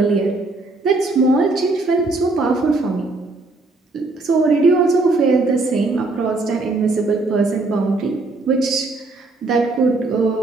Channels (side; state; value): left; quieter; 3.3 dB